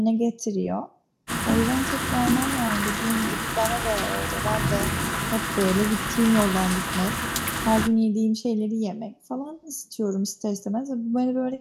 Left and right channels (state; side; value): identical; both; correlation 1.00